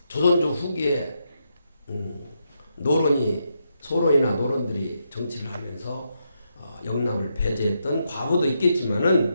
조선조 후기에 소론이나 노론들이 정치를 하면서 영남을 배제했던 과거도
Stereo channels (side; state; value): both; inverted; correlation -0.81